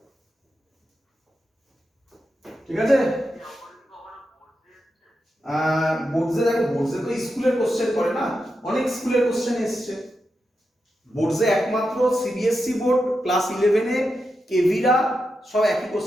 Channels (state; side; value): normal; both; correlation 0.88